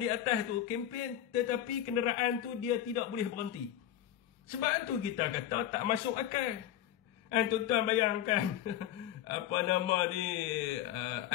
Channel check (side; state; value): right; quieter; 11.7 dB